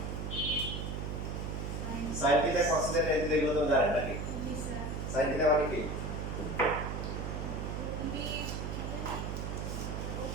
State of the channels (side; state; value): right; noise; hum, 3 dB below the sound